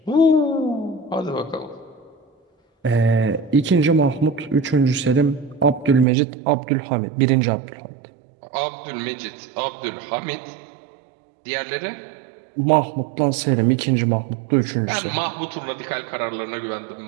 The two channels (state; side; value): drops out; left; at 6.1 s